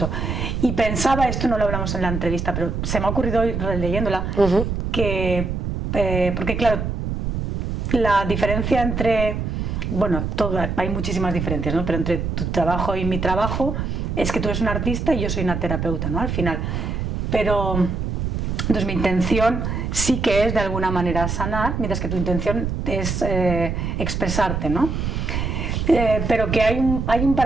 Y pensaba, esto no lo hablamos en la entrevista, pero se me ha ocurrido hoy leyéndola, que, porque claro, la diferencia entre, bueno, hay muchísimas diferencias, ¿no? Pero entre tu trabajo y mi trabajo es que tú eres un artista y yo soy una terapeuta, ¿no? Al final. Pero, entonces mi intención sí que es de alguna manera sanar, mientras que tu intención es expresarte, ¿no? Pero que hay un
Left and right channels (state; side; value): noise; right; rumble, 2 dB below the sound